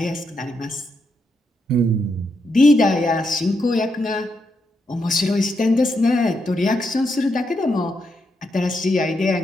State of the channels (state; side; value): normal; both; correlation 0.81